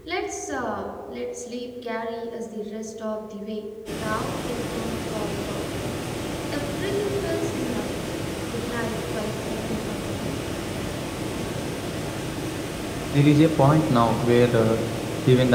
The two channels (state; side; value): identical; both; correlation 1.00